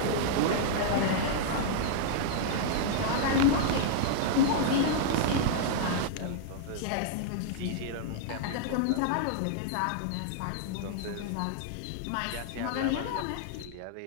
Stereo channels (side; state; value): both; different; correlation -0.01